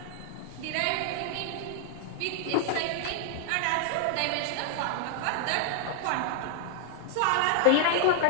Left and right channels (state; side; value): different; both; correlation 0.00